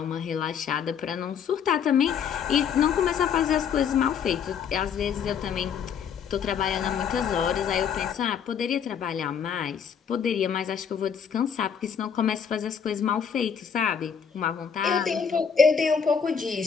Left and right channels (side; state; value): right; quieter; 7.2 dB